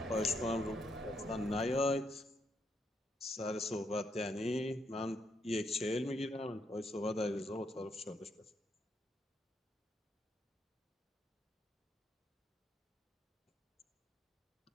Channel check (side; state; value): both; normal; correlation 0.77